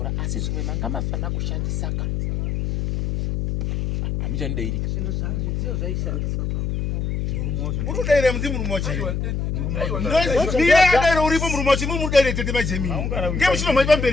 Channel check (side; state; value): left; noise; hum, 1 dB below the sound